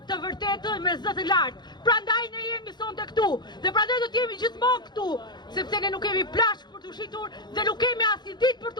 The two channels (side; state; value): right; late; 0.21 ms